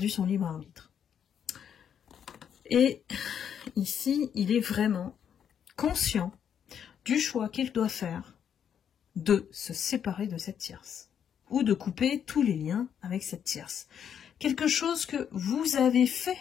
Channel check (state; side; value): quieter; right; 8.5 dB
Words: son libre arbitre. Et ici, il est vraiment conscient du choix qu'il doit faire de se séparer de cette tierce, ou de couper tous les liens avec cette tierce. Quelque chose que vous avez fait,